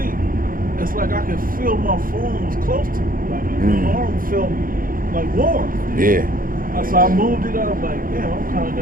it's like I could feel my phone was close to me. Like my arm felt like warm. yeah. So I moved it up. Like, damn, I'm kind of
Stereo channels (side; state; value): left; late; 0.41 ms